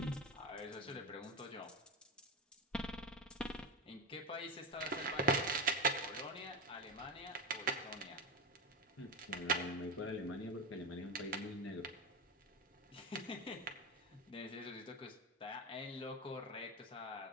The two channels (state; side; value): normal; both; correlation 0.17